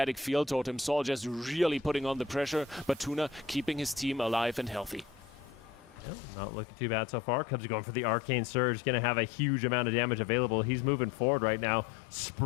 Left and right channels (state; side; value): drops out; right; at 6.1 s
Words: field totem, Saul just really putting on the pressure, but Tuna keeping his team alive and healthy. Yeah, not looking too bad so far. Cubs are going for the Arcane Surge, going to have a huge amount of damage available. He's moving forward right now,